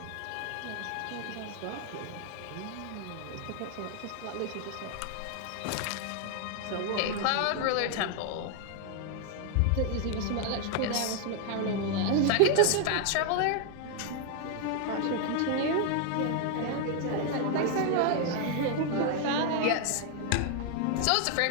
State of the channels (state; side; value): different; both; correlation 0.00